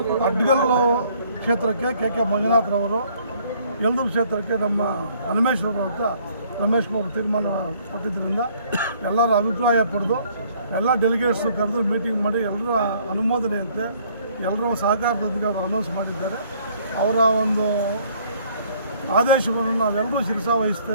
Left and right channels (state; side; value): inverted; both; correlation -0.61